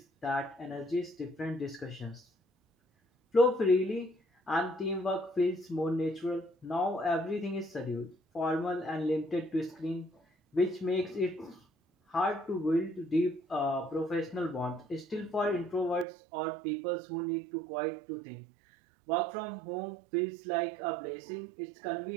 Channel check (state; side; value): drops out; left; at 16.1 s